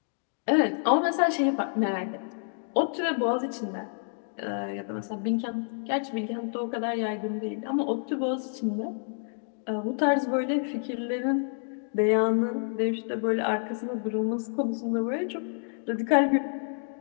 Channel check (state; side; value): silent; right; digital silence